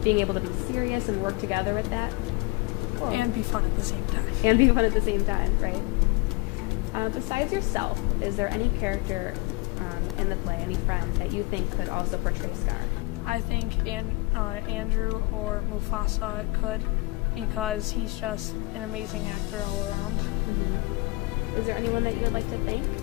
being able to be serious and work together with that? Cool. And be fun at the same time. And be fun at the same time, right? Besides yourself, is there any character in the play, any friend that you think could also portray Scar? I think Andrew or Mufasa could because he's just an amazing actor all around. Mm-hmm. Is there anyone that you would like to thank?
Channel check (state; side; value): quieter; right; 24.3 dB